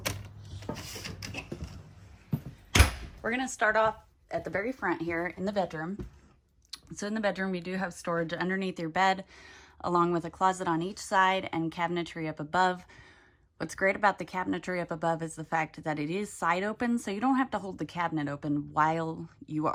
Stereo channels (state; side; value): identical; both; correlation 1.00